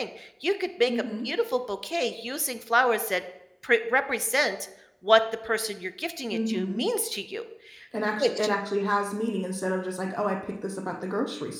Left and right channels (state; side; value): identical; both; correlation 1.00